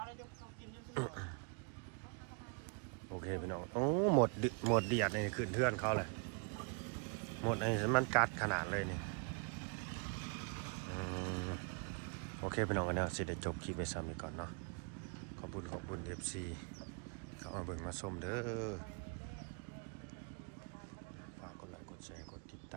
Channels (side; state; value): left; quieter; 37.2 dB